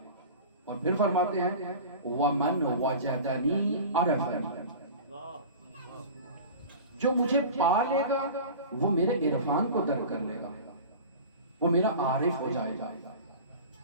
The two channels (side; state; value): both; inverted; correlation -0.35